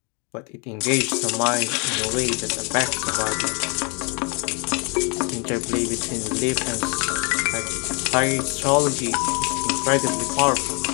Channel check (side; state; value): right; quieter; 33.3 dB